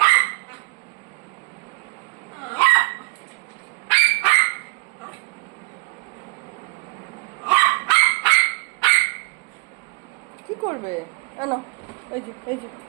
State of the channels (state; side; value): quieter; left; 28.0 dB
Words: কি করবে? না, এই যে